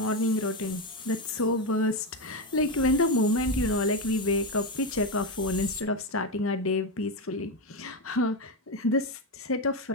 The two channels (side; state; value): both; normal; correlation 0.11